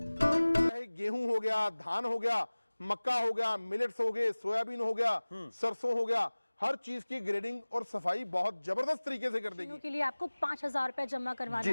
चाहे गेहूं हो गया, धान हो गया, मक्का हो गया, मिलेट्स हो गए, सोयाबीन हो गया, सरसों हो गया, हर चीज की ग्रेडिंग और सफाई बहुत जबरदस्त तरीके से कर देगी। के लिए आपको 5,000 रुपए जमा करवाना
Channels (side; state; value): both; inverted; correlation -1.00